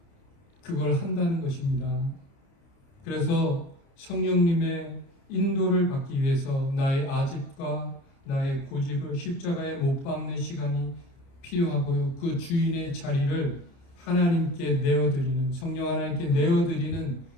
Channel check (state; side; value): late; right; 29 ms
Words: 그걸 한다는 것입니다. 그래서 성령님의 인도를 받기 위해서 나의 아집과 나의 고집을 십자가에 못 박는 시간이 필요하고요. 그 주인의 자리를 하나님께 내어드리는, 성령 하나님께 내어드리는